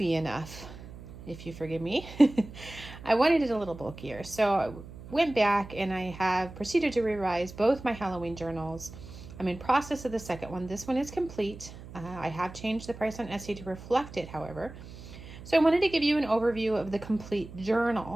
enough, if you forgive me. I wanted it a little bulkier. So I went back and I have proceeded to revise both my Halloween journals. I'm in process of the second one. This one is complete. I have changed the price on Etsy to reflect it, however. So I wanted to give you an overview of the complete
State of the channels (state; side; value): noise; right; hum, 15 dB below the sound